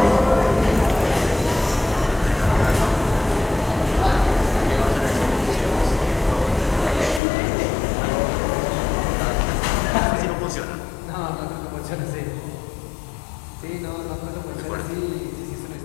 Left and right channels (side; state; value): right; drops out; at 7.2 s